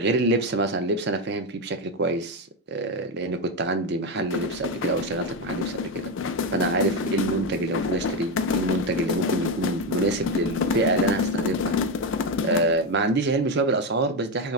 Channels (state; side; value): normal; both; correlation 0.11